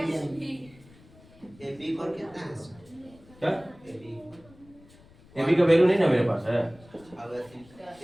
A B पर कितना है सर? क्या? ए बी ab का वैल्यू नहीं ना मेरे पास है, अब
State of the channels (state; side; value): noise; left; rumble, 25 dB below the sound